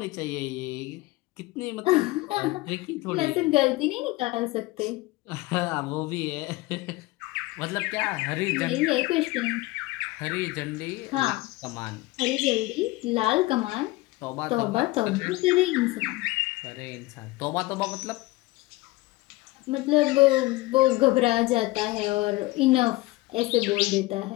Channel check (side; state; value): right; quieter; 20.4 dB